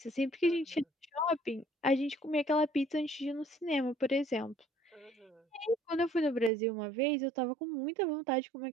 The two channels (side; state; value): left; drops out; at 6.5 s